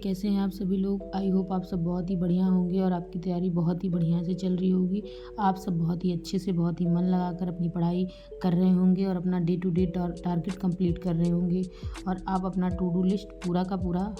हैं आप सभी लोग? आई होप आप सब बहुत ही बढ़िया होंगे और आपकी तैयारी बहुत ही बढ़िया से चल रही होगी। आप सब बहुत ही अच्छे से, बहुत ही मन लगाकर अपनी पढ़ाई कर रहे होंगे और अपना day to day target complete कर रहे होंगे और आप अपना टू डू लिस्ट पूरा का पूरा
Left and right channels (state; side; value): identical; both; correlation 1.00